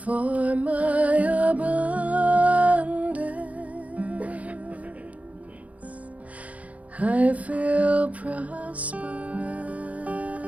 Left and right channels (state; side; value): late; left; 0.069 ms